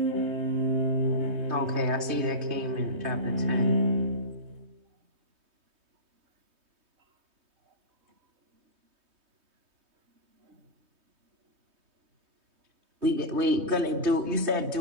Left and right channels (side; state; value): left; late; 3.2 ms